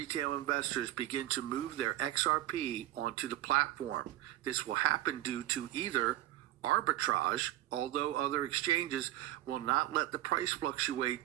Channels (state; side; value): quieter; left; 14.3 dB